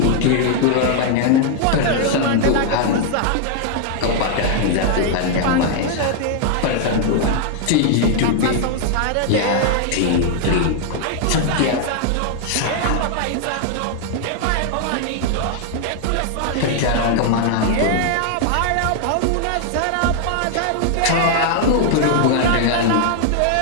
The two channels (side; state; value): both; different; correlation 0.00